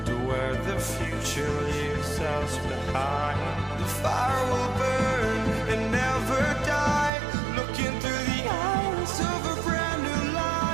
to where the future leaves us behind. The fire will burn and never die, looking through the eyes of a brand new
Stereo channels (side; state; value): left; drops out; at 7.1 s